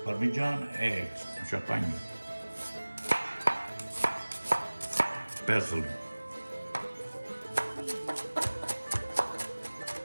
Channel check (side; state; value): both; inverted; correlation -1.00